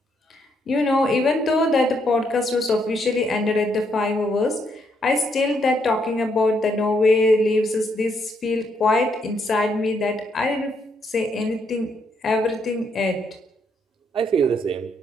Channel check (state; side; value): normal; both; correlation 0.75